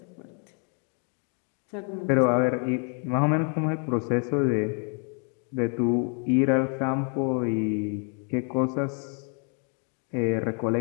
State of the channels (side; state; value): right; quieter; 39.9 dB